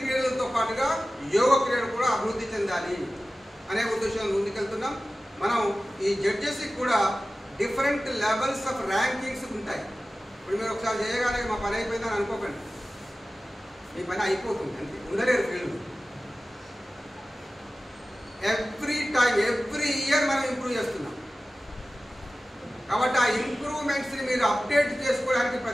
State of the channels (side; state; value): both; normal; correlation 0.96